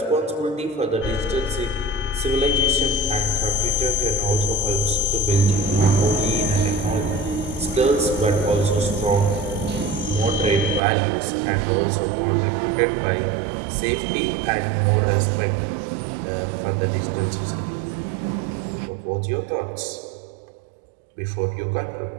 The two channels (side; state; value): left; drops out; at 10.8 s